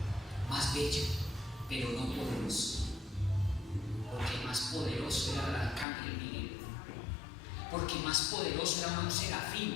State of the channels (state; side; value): drops out; right; at 5.9 s